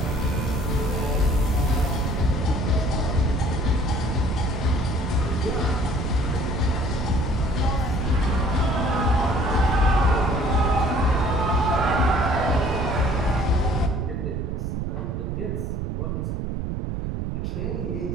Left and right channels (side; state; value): right; noise; rumble, 2 dB below the sound